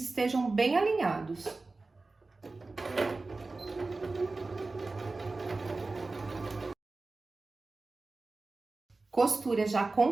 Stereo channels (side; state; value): left; quieter; 3.5 dB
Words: estejam bem alinhados. Costura já